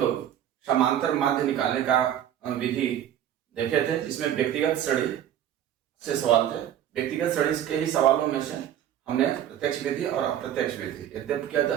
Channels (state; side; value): quieter; left; 10.6 dB